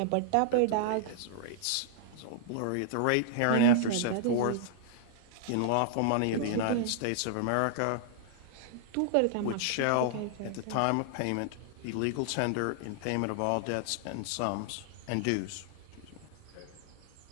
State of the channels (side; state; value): both; different; correlation -0.01